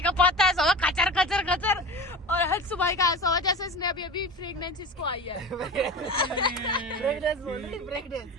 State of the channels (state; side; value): normal; both; correlation 0.32